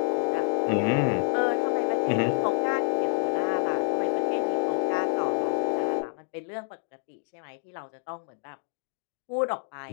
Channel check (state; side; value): silent; right; 60 dB below the other